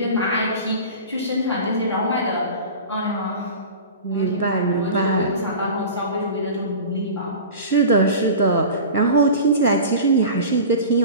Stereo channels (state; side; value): inverted; both; correlation -0.35